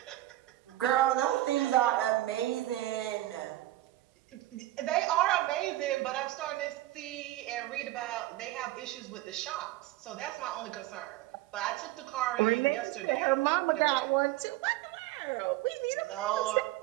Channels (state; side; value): quieter; left; 16.1 dB